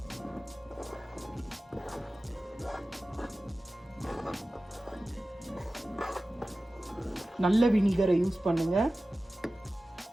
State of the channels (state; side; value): normal; both; correlation 0.96